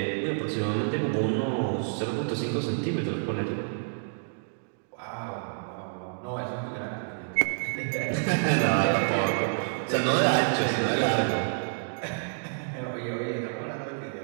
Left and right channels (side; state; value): left; silent; digital silence